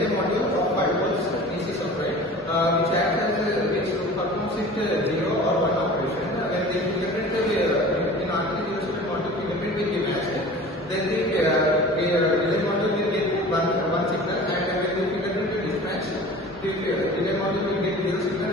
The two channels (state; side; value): normal; both; correlation 0.41